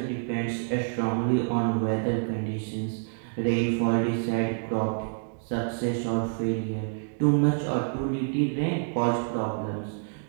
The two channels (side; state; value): left; silent; digital silence